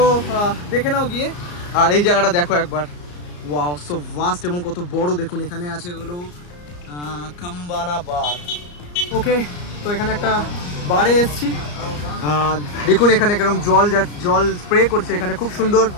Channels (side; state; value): right; late; 34 ms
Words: দেখে নাও গিয়ে। আর এই জায়গাটা দেখো একবার, ওয়াও, সো ভাস্ট এবং কত বড় দেখুন। এখানে আছে হলো কাম্বানা বার। ওকে, তো এখানে একটা বারে এসছি, দেখুন এখানে কেরকম জল স্প্রে করছে, এখানে খুব সুন্দর